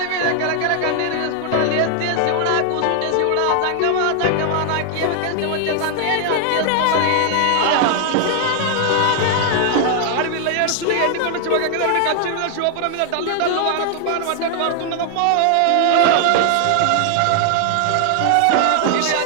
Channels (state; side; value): different; both; correlation 0.00